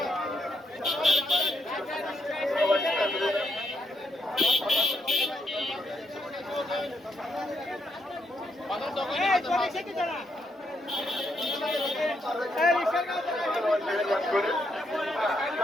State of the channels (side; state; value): both; normal; correlation 0.77